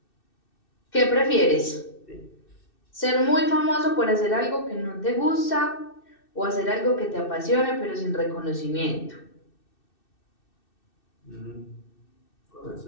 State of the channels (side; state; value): right; late; 2.6 ms